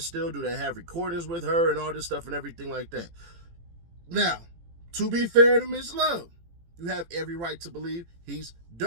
Do they have recordings with her and all this stuff and everything like that? Now, to be fair to Miss Love, you have every right to believe he's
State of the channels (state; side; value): late; left; 18 ms